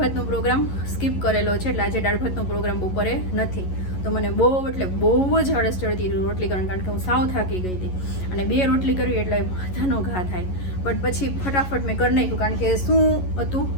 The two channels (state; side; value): late; right; 11 ms